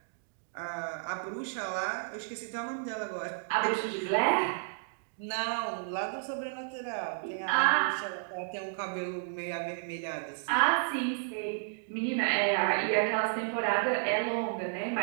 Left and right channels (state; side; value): silent; left; digital silence